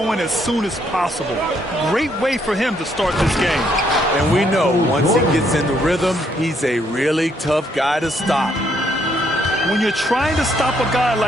as soon as possible. Great way for him to start this game. And we know once he gets in the rhythm, he's a really tough guy to stop. When you're trying to stop a guy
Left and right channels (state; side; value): normal; both; correlation 0.71